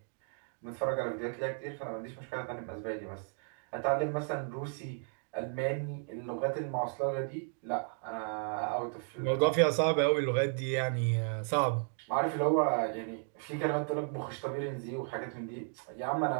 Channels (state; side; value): silent; left; 55 dB below the other